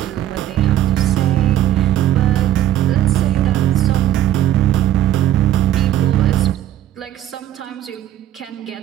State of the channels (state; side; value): quieter; left; 12.3 dB